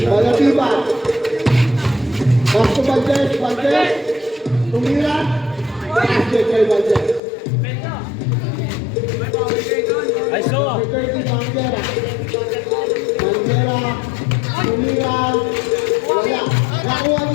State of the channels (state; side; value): drops out; right; at 7.2 s